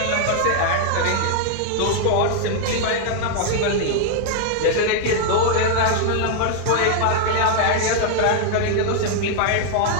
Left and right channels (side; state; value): both; different; correlation 0.00